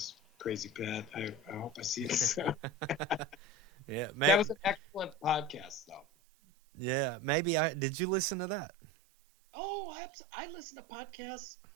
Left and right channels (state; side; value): drops out; left; at 6.1 s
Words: Crazy Pat. I hope I see it soon. Yeah, That was an excellent podcast, though. yeah. Maybe I did. You listen to that? Oh, I listen to podcasts.